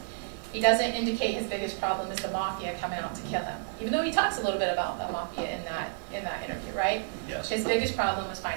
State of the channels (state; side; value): silent; left; digital silence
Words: He doesn't indicate his biggest problem is the mafia coming out to kill him, even though he talks a little bit about the mafia in that interview, right? Yes. His biggest problem was